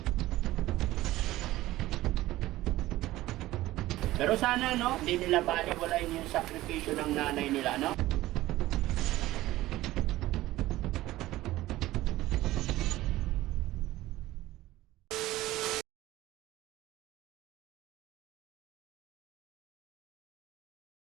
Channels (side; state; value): left; quieter; 16.5 dB